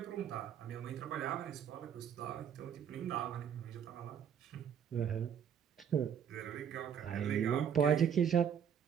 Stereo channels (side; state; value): left; quieter; 8.3 dB